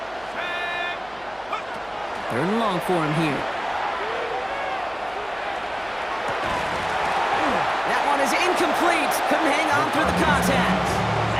3rd and long for him here. That one is incomplete. Couldn't hang on through the contact.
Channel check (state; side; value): noise; right; hum, 25 dB below the sound